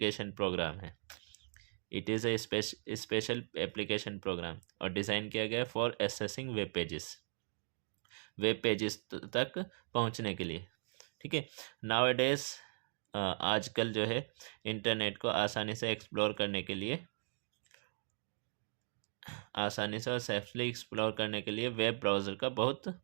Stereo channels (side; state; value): left; silent; digital silence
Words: प्रोग्राम है। It is a special application program, और डिज़ाइन किया गया फॉर एक्सेसिंग वेब पेजेस तक पहुंचने के लिए। ठीक है। नाउ डेज आजकल जो है इंटरनेट को आसानी से एक्सप्लोर करने के लिए, आसानी से और सेफली एक्सप्लोर करने के लिए वेब ब्राउज़र का बहुत